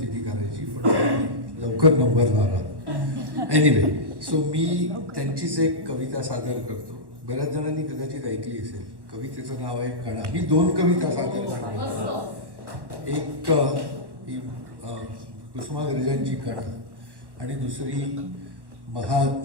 ती करायची, पण लवकर नंबर लावला. एनिवे, सो मी त्यांचीच एक कविता सादर करतो. बऱ्याच जणांनी कदाचित ऐकली असेल. कवितेचं नाव आहे कणा. मी 2 कविता सादर करतो. एक ही कुसुमाग्रजांची कणा आणि दुसरी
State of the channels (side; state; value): left; late; 1.2 ms